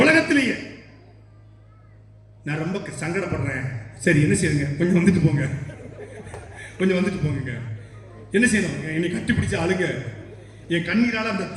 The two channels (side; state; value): both; identical; correlation 1.00